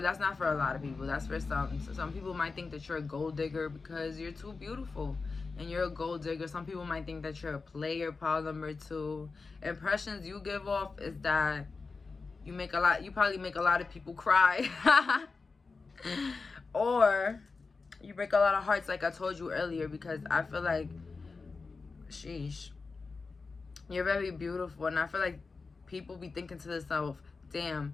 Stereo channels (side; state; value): right; quieter; 4.3 dB